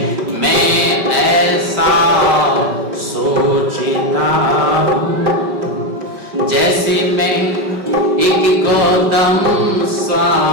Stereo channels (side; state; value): left; late; 5.3 ms